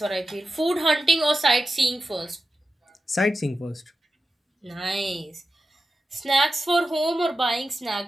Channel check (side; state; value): both; normal; correlation 0.92